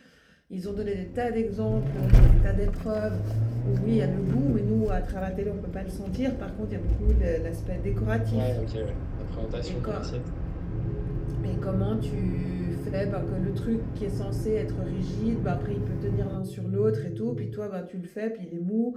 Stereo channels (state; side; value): identical; both; correlation 1.00